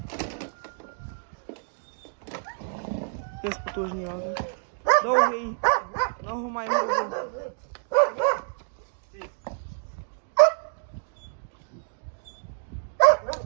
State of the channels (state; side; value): silent; left; digital silence